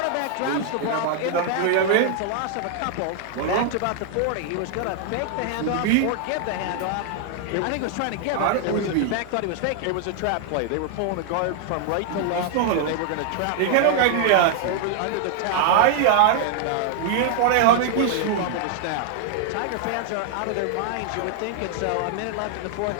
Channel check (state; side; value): different; both; correlation 0.00